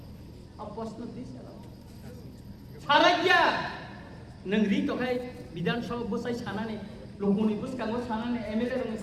প্রশ্ন দিয়েছেন সারা গিয়া नोंरि तखाय विधानसभा बसाय सानानै लोकनि बुसकांगो सानानै एमएलए रंनि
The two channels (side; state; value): both; identical; correlation 1.00